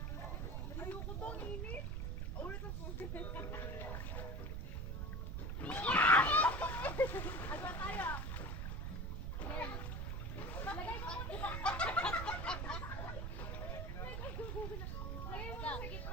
Ayoko to, ang init. Ulit ang puso. Agwa tayo. Lagay mo muna. Lagay mo sa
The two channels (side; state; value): right; noise; rumble, 2 dB below the sound